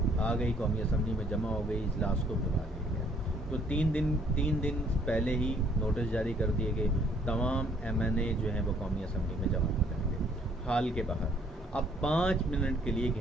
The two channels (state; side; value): normal; both; correlation 0.63